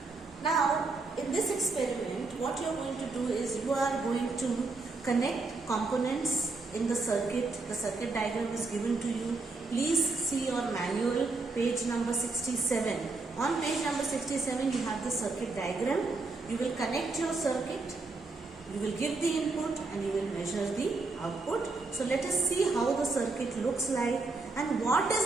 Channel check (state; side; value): quieter; left; 3.7 dB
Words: Now, in this experiment, what you are going to do is you are going to connect components in the circuit. The circuit diagram is given to you. Please see your manual, page number 67. On page number 67, you have the circuit diagram. You will connect your circuit, you will give the input, and you will measure the output. So let us see how the circuit looks like and what